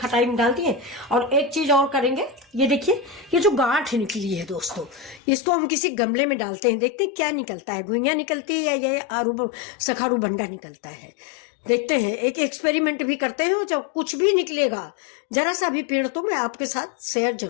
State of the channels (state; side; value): drops out; right; at 5.2 s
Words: में डाल दिए, और एक चीज और करेंगे। ये देखिए, ये जो गांठ निकली है दोस्तों, इसको हम किसी गमले में डालते हैं, देखते हैं क्या निकलता है, घुइयां निकलती है या ये आरू सखारू बंडा निकलता है। देखते हैं, एक एक्सपेरिमेंट भी करते हैं। जब कुछ भी निकलेगा, जरा सा भी पेड़, तो मैं आपके साथ शेयर